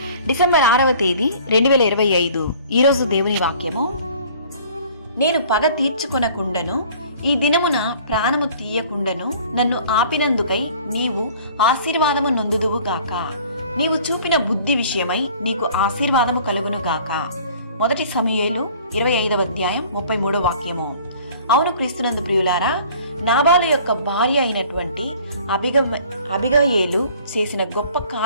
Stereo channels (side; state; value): both; inverted; correlation -0.50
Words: డిసెంబర్ 6వ తేదీ 2025. ఈరోజు దేవుని వాక్యము. నేను పగ తీర్చుకొనకుండను, ఈ దినమున ప్రాణము తీయకుండను నన్ను ఆపినందుకై నీవు ఆశీర్వాదము నొందుదువు గాక. నీవు చూపిన బుద్ధి విషయమై నీకు ఆశీర్వాదము కలుగును గాక. 1 సమూయేలు 25వ అధ్యాయం 33వ వాక్యము. అవును క్రీస్తునందు ప్రియులారా, నాబాలు యొక్క భార్య అయినటువంటి అబిగయేలు చేసిన గొప్ప